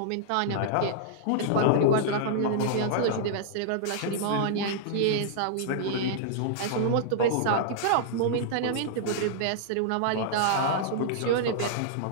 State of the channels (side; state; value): both; different; correlation -0.01